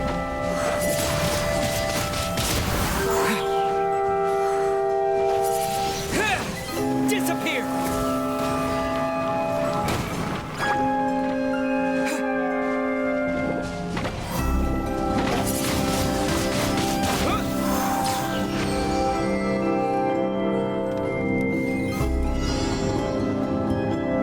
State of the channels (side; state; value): both; identical; correlation 1.00